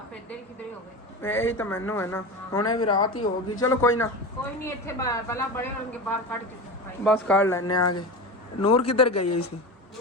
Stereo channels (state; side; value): normal; both; correlation 0.26